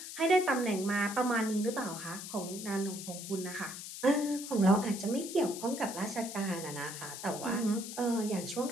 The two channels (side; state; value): left; noise; hiss, 9 dB below the sound